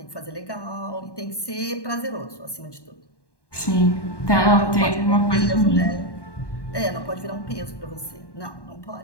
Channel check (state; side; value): late; right; 1.1 ms